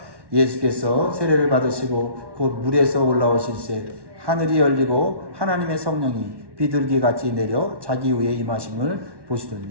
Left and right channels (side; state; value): left; late; 1.1 ms